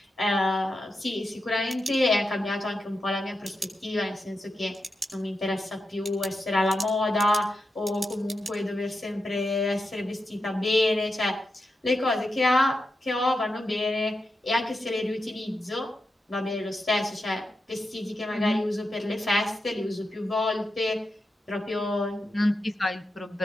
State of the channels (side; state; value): both; normal; correlation 0.88